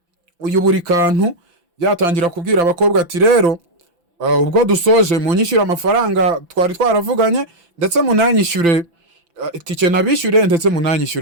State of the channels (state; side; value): late; left; 5.9 ms